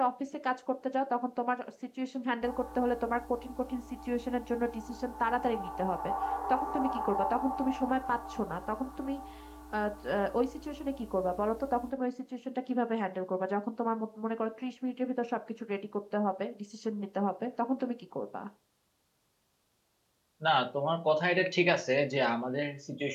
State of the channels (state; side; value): identical; both; correlation 1.00